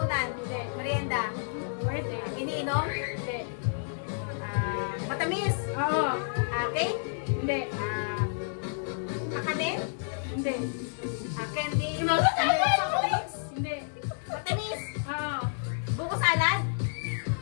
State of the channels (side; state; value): right; silent; digital silence